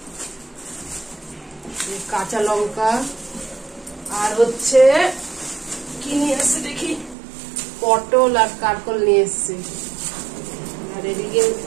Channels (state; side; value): drops out; left; at 7.2 s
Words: কাঁচা লঙ্কা, আর হচ্ছে কি নিয়ে এসছে দেখি, পটল আর কারকল নিয়ে এসছে। আর এদিকে